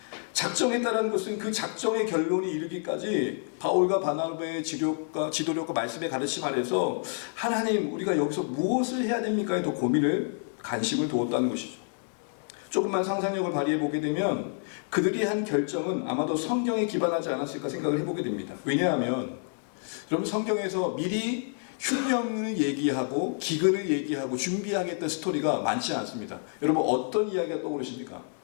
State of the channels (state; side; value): silent; right; 59 dB below the other